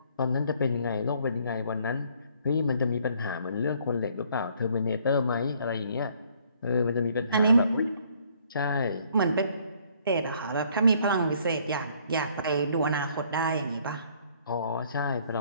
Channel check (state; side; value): inverted; both; correlation -0.63